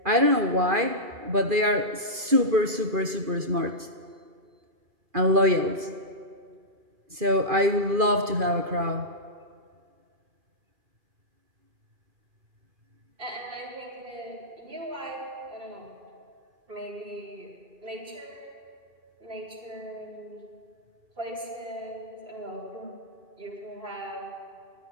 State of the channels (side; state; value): left; late; 2.5 ms